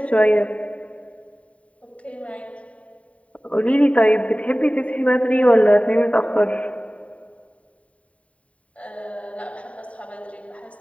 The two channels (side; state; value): right; late; 0.066 ms